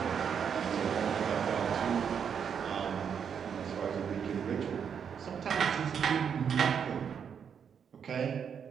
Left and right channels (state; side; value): quieter; left; 7.4 dB